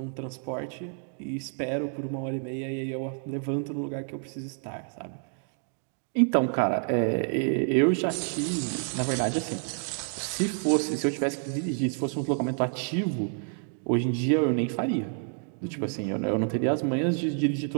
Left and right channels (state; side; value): silent; left; 57 dB below the other